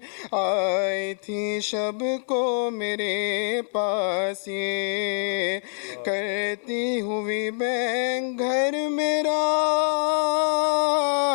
آئی تھی شب کو میرے پاس یہ کرتی ہوئی بین گھر میرا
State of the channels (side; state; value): right; silent; 62 dB below the other